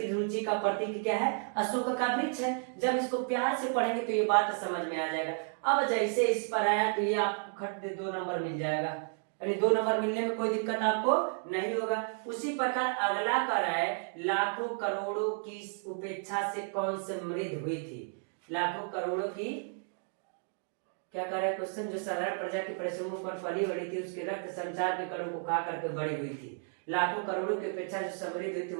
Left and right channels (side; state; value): left; silent; 56 dB below the other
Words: रुचि का प्रतीक क्या है, अशोक का वृक्ष है। जब इसको प्यार से पढ़ेंगे तो ये बात समझ में आ जाएगा। अब जैसे इस पर आया तो ये आपको खट दे 2 नंबर मिल जाएगा, यानी 2 नंबर मिलने में कोई दिक्कत आपको नहीं होगा। उसी प्रकार अगला कर है, लाखों करोड़ों की उपेक्षा से कौन समृद्ध हुई थी। लाखों करोड़ों की क्या कर रहा है क्वेश्चन, जो साधारण प्रजा के परिश्रमों पर पली बढ़ी थी, उसके रक्त संचार के कणों को खा करके बड़ी हुई थी। लाखों करोड़ों की अपेक्षा जो समृद्ध हुई थी